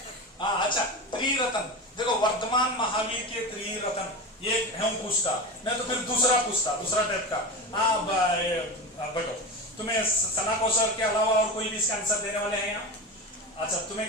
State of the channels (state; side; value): normal; both; correlation 0.24